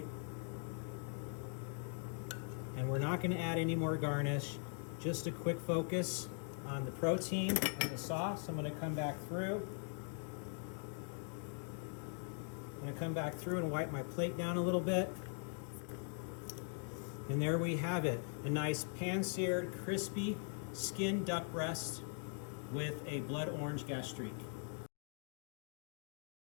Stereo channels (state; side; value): silent; right; 50 dB below the other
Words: And we're not gonna add any more garnish, just a quick focus on the protein and the sauce. I'm gonna come back through. I'm gonna come back through and wipe my plate down a little bit. And there we have it, a nice pan-seared, crispy skin duck breast with a blood orange gastrique.